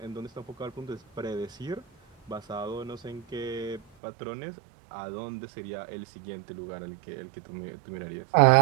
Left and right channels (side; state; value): left; drops out; at 3.8 s